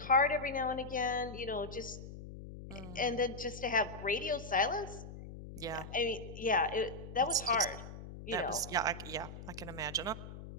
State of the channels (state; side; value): noise; left; hum, 12 dB below the sound